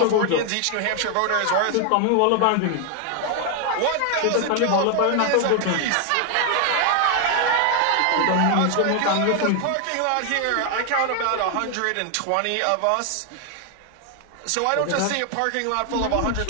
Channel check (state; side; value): different; both; correlation 0.00